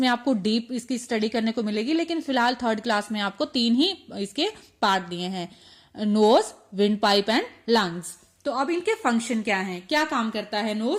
आपको डीप इसकी स्टडी करने को मिलेगी, लेकिन फिलहाल 3rd क्लास में आपको 3 ही इसके पार्ट दिए हैं, nose, wind pipe and lungs. तो अब इनके फंक्शन क्या है, क्या काम करता है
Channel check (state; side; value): identical; both; correlation 1.00